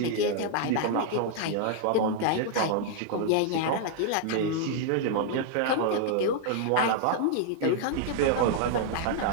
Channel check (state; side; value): different; both; correlation -0.01